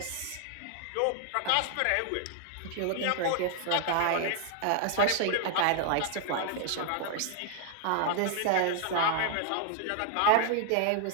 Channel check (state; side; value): different; both; correlation 0.00